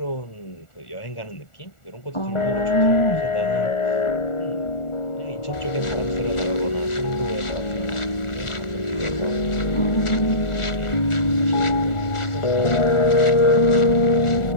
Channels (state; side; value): late; right; 1.4 ms